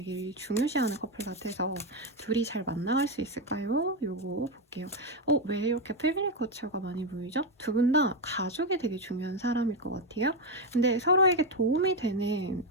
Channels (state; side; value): normal; both; correlation 0.08